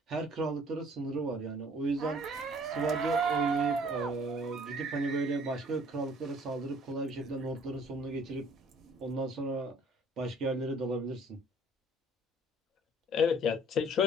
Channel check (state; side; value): normal; both; correlation 0.56